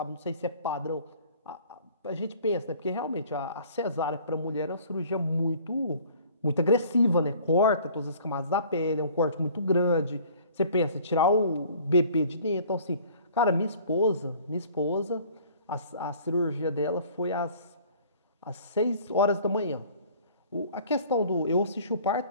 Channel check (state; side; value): inverted; both; correlation -0.51